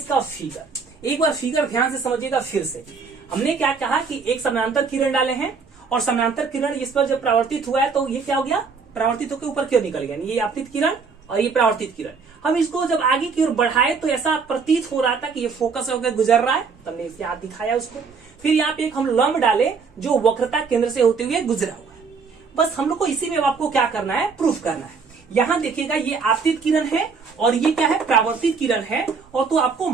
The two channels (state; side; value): quieter; left; 5.2 dB